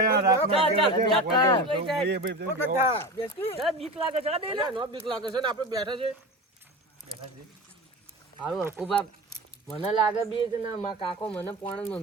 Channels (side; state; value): both; normal; correlation 0.28